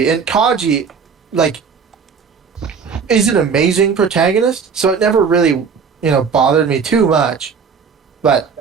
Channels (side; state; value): left; quieter; 6.0 dB